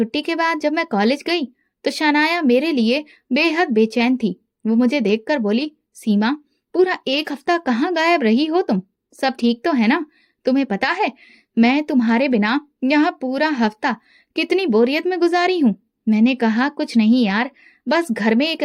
के बाद जब मैं कॉलेज गई तो शनाया मेरे लिए बेहद बेचैन थी। वो मुझे देखकर बोली, सीमा, पूरा 1 हफ्ता कहाँ गायब रही हो तुम? सब ठीक तो है ना? तुम्हें पता है मैं तुम्हारे बिना यहाँ पूरा हफ्ता कितनी बोरियत में गुजारी हूँ। मैंने कहा, कुछ नहीं यार, बस घर में एक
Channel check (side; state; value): both; identical; correlation 1.00